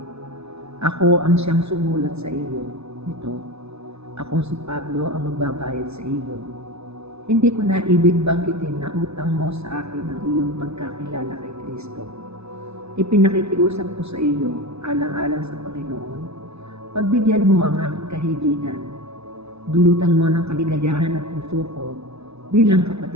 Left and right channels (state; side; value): late; left; 0.80 ms